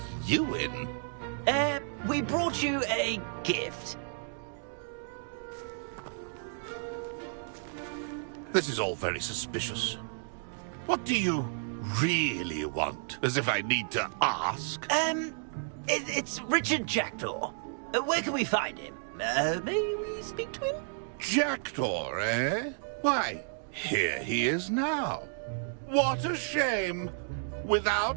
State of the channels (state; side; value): silent; left; digital silence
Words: you in? We brought you a gift. This is all very suspicious. What do you really want? As if I need to ask. It's Richard Jackdaw. Where can we find him? May we speak to him? Jackdaw, eh? Why, here he is now. What a shame.